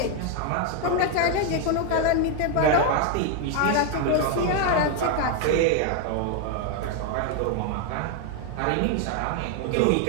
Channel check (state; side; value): different; both; correlation 0.01